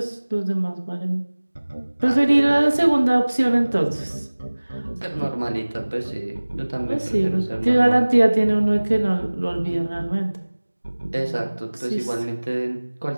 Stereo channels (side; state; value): both; inverted; correlation -1.00